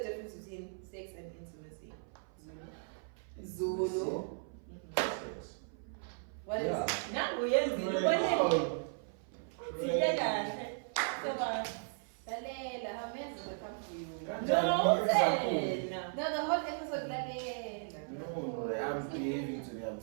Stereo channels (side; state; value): left; silent; 53 dB below the other